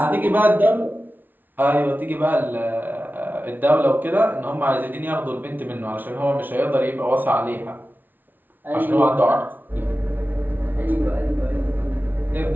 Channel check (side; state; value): left; late; 0.088 ms